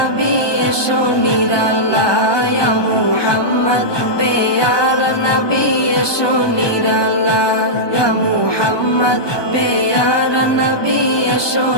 এসো নিরালা ইয়া মুহাম্মদ প্যারা নবী এসো নিরালা ইয়া মুহাম্মদ প্যারা নবী এসো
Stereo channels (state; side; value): late; right; 1.2 ms